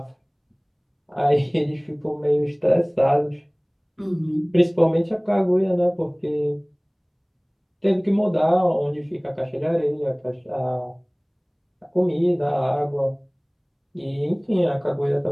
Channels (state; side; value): identical; both; correlation 1.00